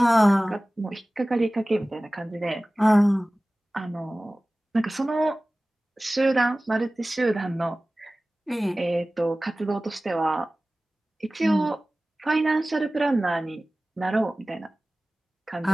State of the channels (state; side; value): normal; both; correlation 0.98